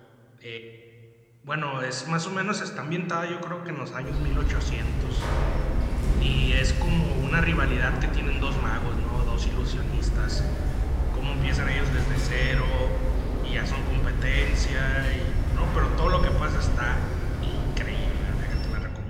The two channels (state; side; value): identical; both; correlation 1.00